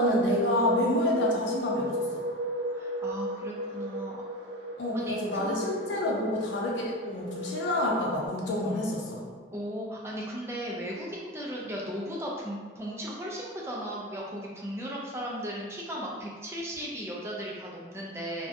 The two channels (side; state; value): both; normal; correlation 0.23